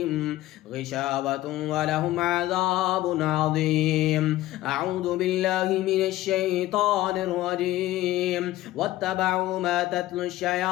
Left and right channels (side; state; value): right; quieter; 15.9 dB